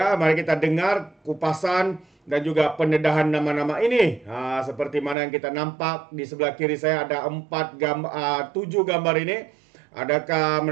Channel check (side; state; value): left; drops out; at 5.2 s